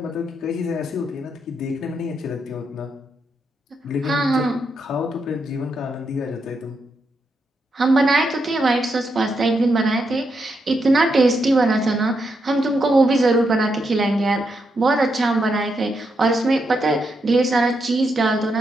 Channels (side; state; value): both; normal; correlation 0.82